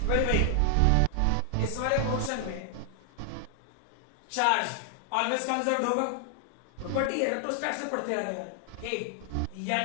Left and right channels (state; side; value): different; both; correlation 0.00